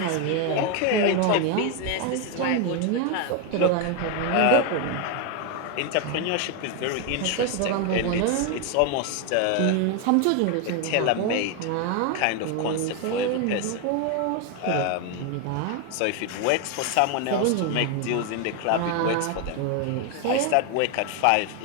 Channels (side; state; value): both; different; correlation 0.01